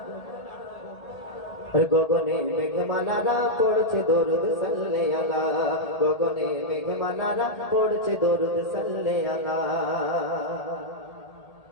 গগনে মেঘমালারা পড়ছে দরুদ সাল্লে আলা, গগনে মেঘমালারা পড়ছে দরুদ সাল্লে আলা।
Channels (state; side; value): late; right; 1.8 ms